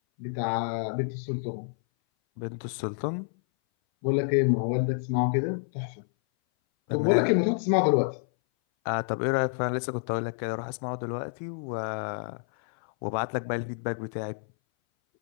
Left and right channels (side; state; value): right; silent; 58 dB below the other